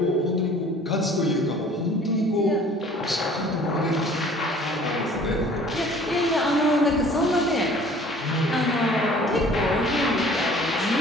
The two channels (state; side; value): normal; both; correlation 0.51